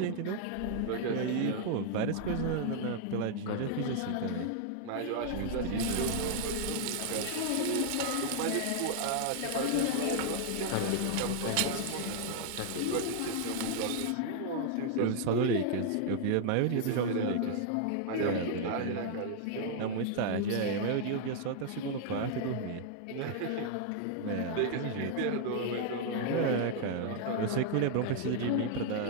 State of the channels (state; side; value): different; both; correlation -0.01